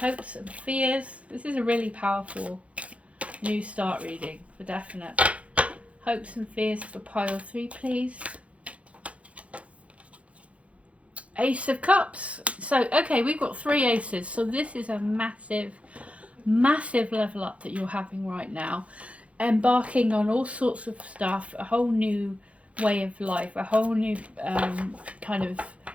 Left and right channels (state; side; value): late; left; 0.064 ms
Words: and fears. This is a really powerful new start reading for definite. Hopes and fears for pile 3, please. Ace of Cups. So okay, we've got 3 aces, so this is a massive level up that you're having right now, embarking on all sorts of stuff, a whole new way of life, a whole new kind of